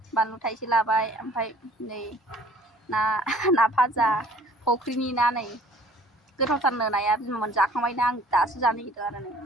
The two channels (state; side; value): normal; both; correlation 0.53